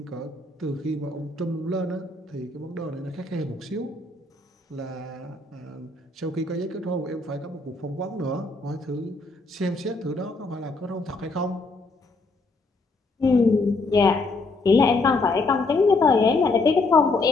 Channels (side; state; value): right; quieter; 3.3 dB